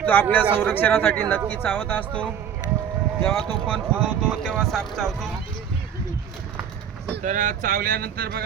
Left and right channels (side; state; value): left; quieter; 8.3 dB